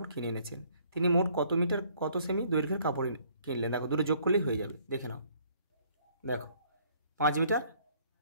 কিনে এনেছেন। তিনি মোট কত মিটার কত সেমি দৈর্ঘ্যের কাপড় কিনলেন, দেখো দুটো যোগ করলেই হয়ে যাবে, দেখে নাও। দেখো 5 মিটার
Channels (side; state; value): both; inverted; correlation -0.63